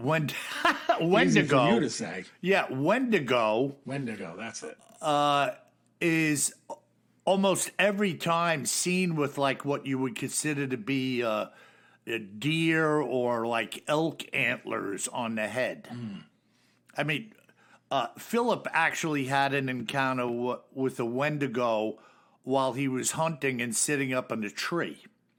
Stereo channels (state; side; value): identical; both; correlation 1.00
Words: to Wendigo, say. yeah, Wendigo, that's it. is almost every time seen with like what you would consider to be a deer or like elk antlers on the head. I mean, Philip actually had an encounter with a Wendigo while he was hunting and sitting up in a tree.